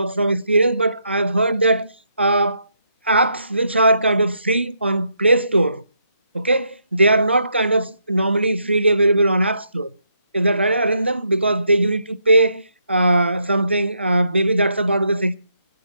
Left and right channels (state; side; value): inverted; both; correlation -0.77